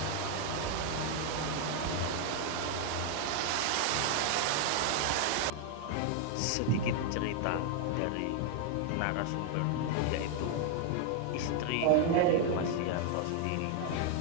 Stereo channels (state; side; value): different; both; correlation 0.00